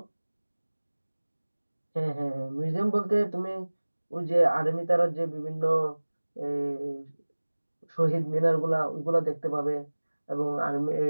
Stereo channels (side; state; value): both; inverted; correlation -1.00